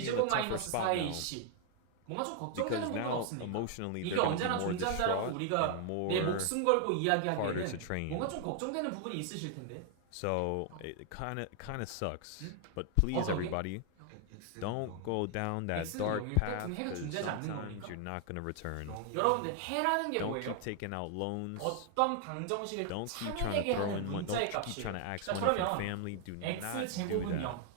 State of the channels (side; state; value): both; different; correlation 0.00